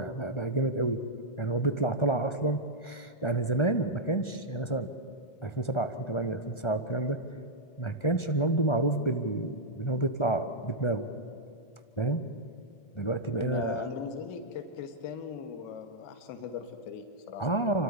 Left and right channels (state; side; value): late; right; 1.3 ms